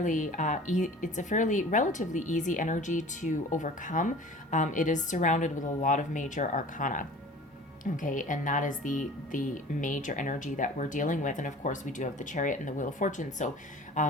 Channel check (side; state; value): both; normal; correlation 0.43